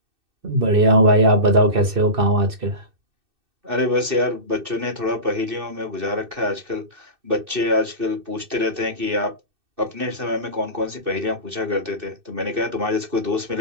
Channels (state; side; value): late; left; 2.6 ms